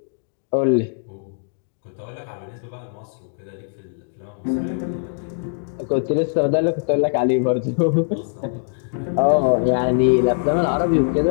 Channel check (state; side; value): silent; right; digital silence